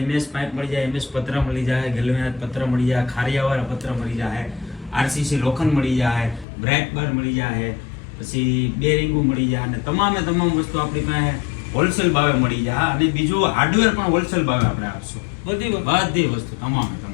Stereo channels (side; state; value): right; drops out; at 6.5 s